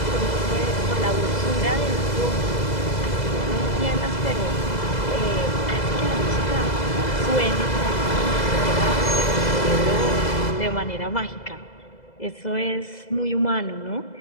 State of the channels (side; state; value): right; late; 2.0 ms